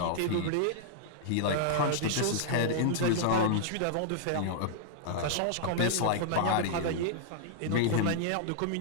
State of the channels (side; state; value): both; different; correlation -0.01